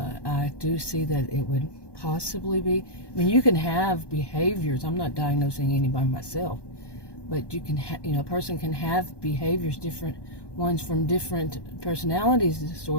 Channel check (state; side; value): late; right; 1.2 ms